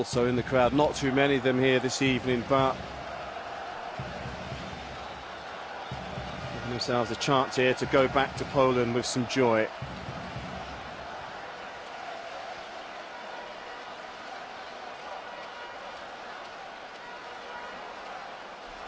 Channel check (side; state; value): both; identical; correlation 1.00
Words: in the crowd. Not too many of them here this evening, but giving themselves a chance here to go back to Poland with some joy.